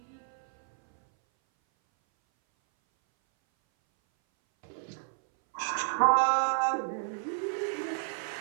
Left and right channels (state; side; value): silent; left; 57 dB below the other